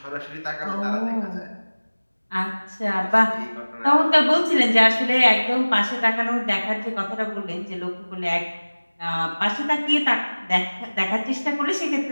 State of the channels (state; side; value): inverted; both; correlation -1.00